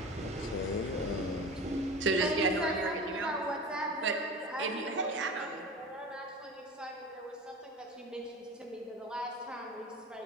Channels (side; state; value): both; normal; correlation 0.33